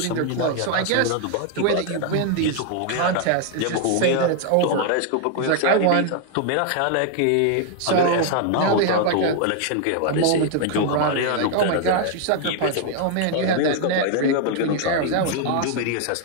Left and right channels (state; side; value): different; both; correlation 0.00